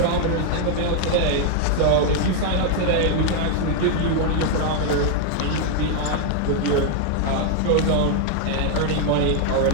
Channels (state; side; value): different; both; correlation 0.00